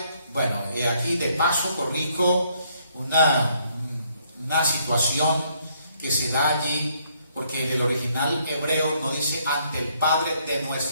Bueno, aquí de paso corrijo una situación que se da allí porque en el original hebreo no dice ante el Padre de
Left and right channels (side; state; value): both; inverted; correlation -0.69